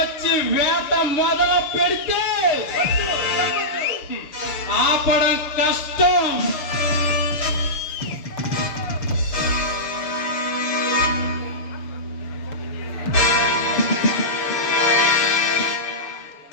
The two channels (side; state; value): right; late; 6.8 ms